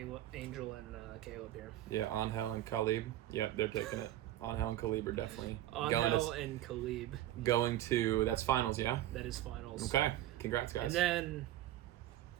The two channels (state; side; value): quieter; left; 13.9 dB